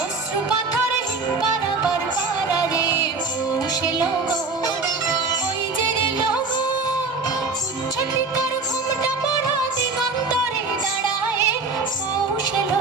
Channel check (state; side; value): quieter; left; 4.0 dB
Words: অশ্রু পাথরে পারাবার পারারে পৌষ এলো গো ওই যে এলো গো উচ্ছ্বসিত তার ঘুমটা পড়া দিগন্তরে দাঁড়ায় পৌষ